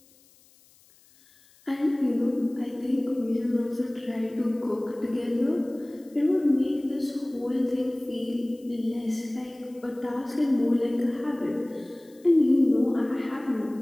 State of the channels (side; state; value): left; noise; hiss, 29 dB below the sound